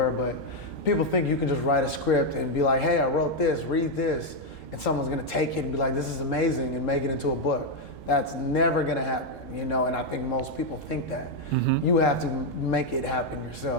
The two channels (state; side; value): normal; both; correlation 0.02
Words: but people think you can just write a script and be like, hey, I wrote this, read this, and someone's gonna take it and be like, this is amazing, and make it into a book. That's never gonna happen, and I think most people think that. Mm-hmm. You have to make it happen